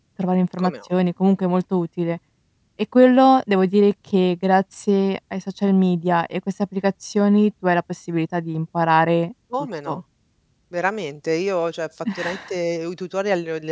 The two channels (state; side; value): identical; both; correlation 1.00